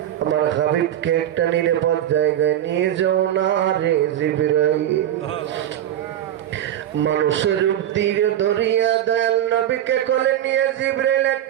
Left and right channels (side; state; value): left; quieter; 11.4 dB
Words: আমার হাবিবকে একটা নিরাপদ জায়গায় নিয়ে যাও না রে জিবরাইল। মানুষের রূপ দিয়ে দরিয়া দয়াল নবীকে কোলে নিয়ে জিবরাইল